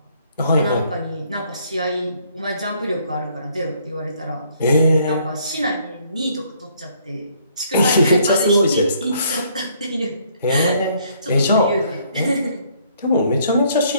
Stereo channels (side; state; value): both; inverted; correlation -0.65